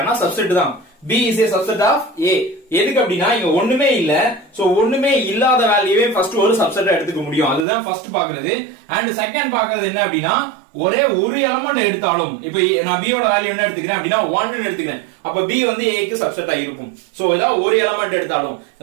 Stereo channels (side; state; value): left; drops out; at 7.7 s